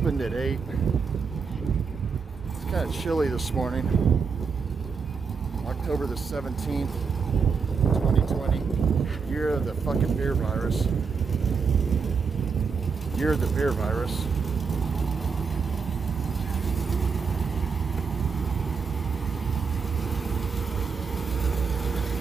at 8. It's kind of chilly this morning. October the 17th, 2020. Year of the fucking beer virus. Year of the beer virus.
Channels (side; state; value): left; quieter; 5.5 dB